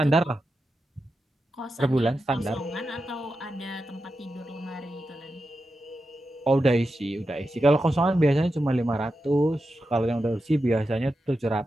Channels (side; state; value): both; normal; correlation 0.90